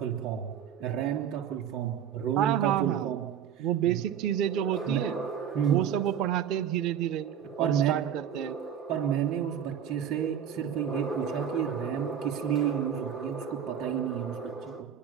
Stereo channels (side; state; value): left; quieter; 8.9 dB